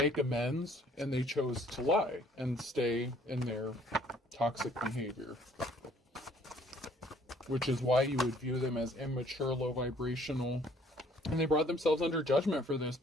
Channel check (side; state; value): both; normal; correlation 0.59